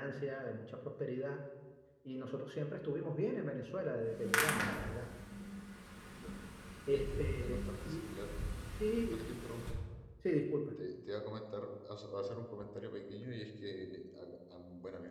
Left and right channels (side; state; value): both; identical; correlation 1.00